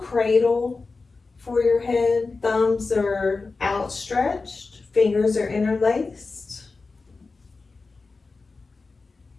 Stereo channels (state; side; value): quieter; right; 4.0 dB